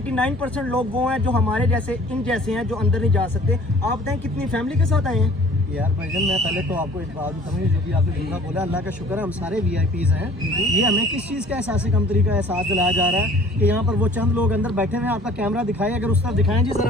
लोग वो हैं जो हमारे जैसे इन जैसे हैं जो अंदर नहीं जा सकते। आप बताएं कितनी फैमिली के साथ आए हैं? यार भाईजान मैं पहले तो आपको एक बात बताऊँ, जो भी आपने दूसरा बोला, अल्लाह का शुक्र है हम सारे VIPs हैं। ये हमें किस चीज़ का एहसास कमतरी का एहसास दिलाया जा रहा है कि यहाँ पर वो चंद लोग अंदर बैठे हुए हैं। आपका कैमरा दिखाएं, अगर उस तरफ दिखाएं जी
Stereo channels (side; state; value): both; normal; correlation 0.51